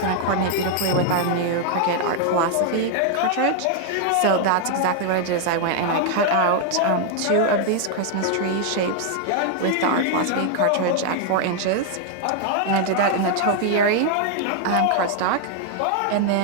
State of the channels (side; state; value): both; different; correlation 0.00